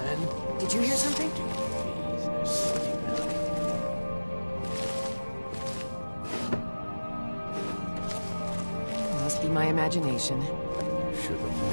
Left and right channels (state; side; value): inverted; both; correlation -1.00